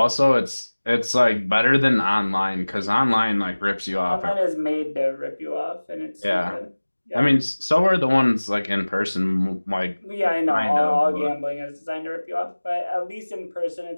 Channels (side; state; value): both; inverted; correlation -1.00